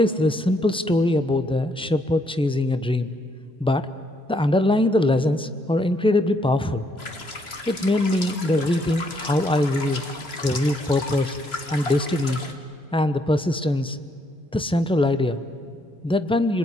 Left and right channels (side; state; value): both; normal; correlation 0.72